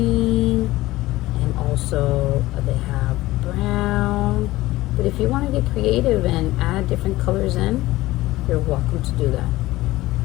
and also they have brown. But if you want to get creative and add different colors in, you're welcome to do that.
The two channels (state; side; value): quieter; right; 17.7 dB